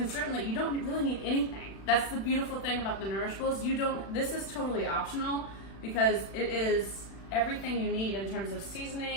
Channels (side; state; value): right; late; 36 ms